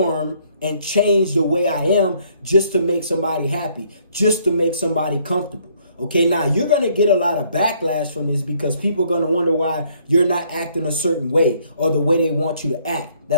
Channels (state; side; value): inverted; both; correlation -0.65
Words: and change the way I am just to make somebody happy, just to make somebody comfortable. Okay, now you're going to get a lot of backlash from this because people are going to wonder why you're not acting a certain way or the way they want you to act.